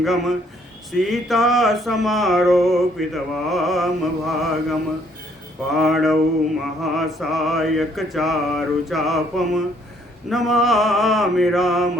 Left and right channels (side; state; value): both; normal; correlation 0.65